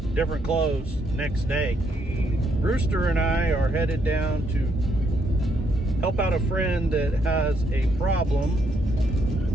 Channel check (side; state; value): both; normal; correlation 0.74